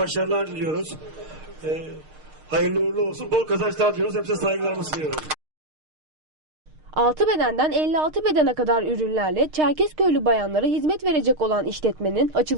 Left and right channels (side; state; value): left; late; 6.5 ms